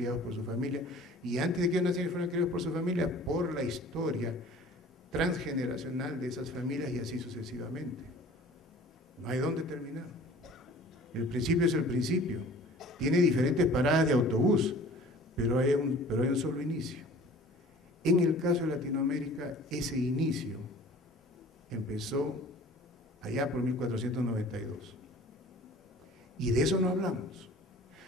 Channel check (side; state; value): both; normal; correlation 0.47